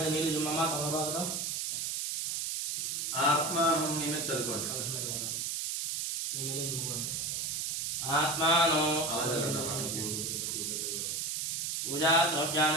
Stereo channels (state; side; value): noise; right; hiss, 1 dB below the sound